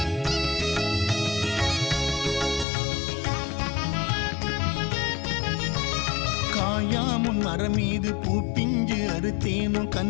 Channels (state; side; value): drops out; right; at 2.7 s